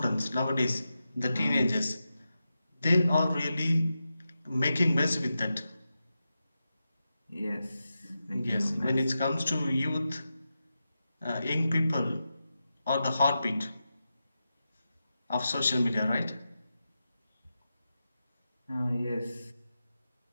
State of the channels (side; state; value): both; inverted; correlation -0.90